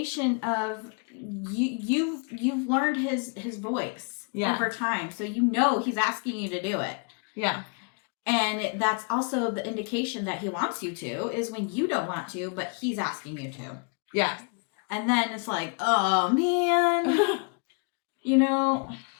of you've learned his voice over time. So you know he's asking you to do it. Yeah. And that's also the indication that he wants you to, is when you don't want to, but he's asking you to. Yeah. And then it's like, oh, man. You know,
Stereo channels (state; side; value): quieter; right; 37.2 dB